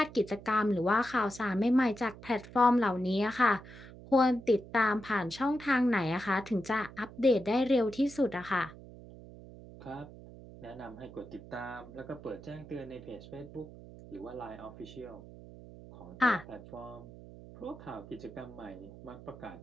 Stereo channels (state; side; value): noise; right; hum, 17 dB below the sound